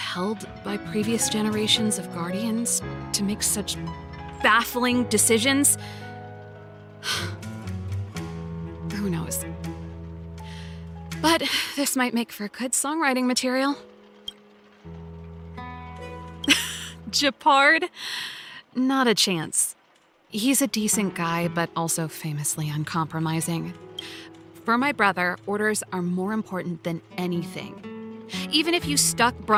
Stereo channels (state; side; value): identical; both; correlation 1.00